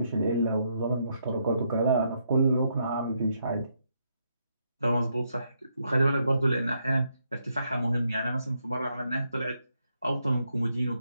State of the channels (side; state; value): both; inverted; correlation -0.78